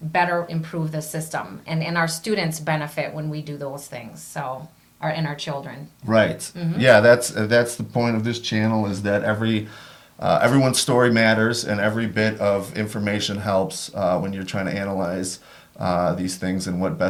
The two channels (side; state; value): both; identical; correlation 1.00